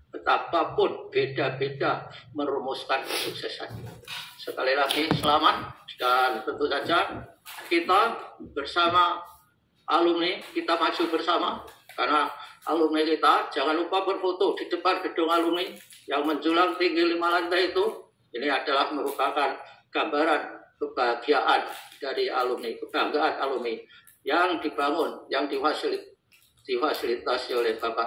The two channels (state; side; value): identical; both; correlation 1.00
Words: Betapapun beda-beda merumuskan kesuksesan. Sekali lagi selamat, dan tentu saja kita bersama alumni, kita maju bersama. Karena alumni kita jangan lupa berfoto di depan gedung alumni yang menjulang tinggi 5 lantai itu. Ini adalah merupakan gambaran kebahagiaan dari alumni, kebanggaan alumni yang dibangun, yang difasilitasi oleh